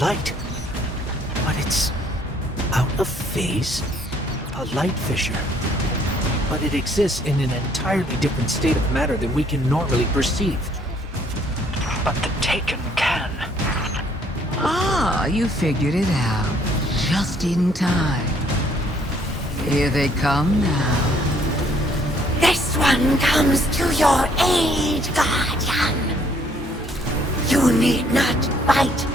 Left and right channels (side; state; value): both; normal; correlation 0.64